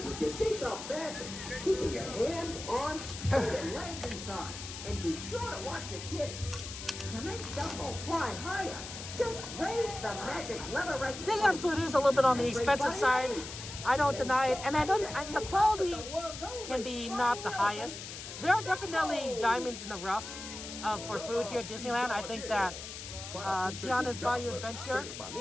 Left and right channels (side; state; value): left; noise; hiss, 10 dB below the sound